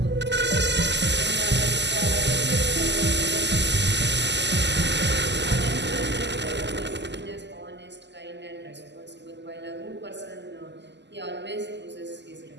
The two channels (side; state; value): left; late; 0.51 ms